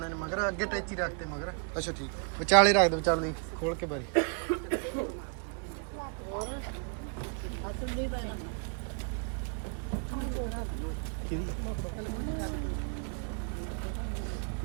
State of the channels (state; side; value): quieter; left; 39.4 dB